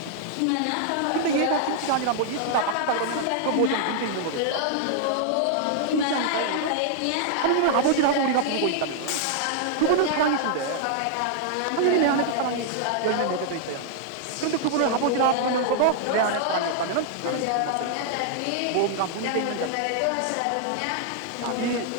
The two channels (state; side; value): different; both; correlation -0.01